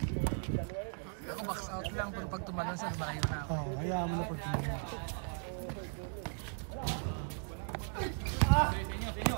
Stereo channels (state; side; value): silent; left; 53 dB below the other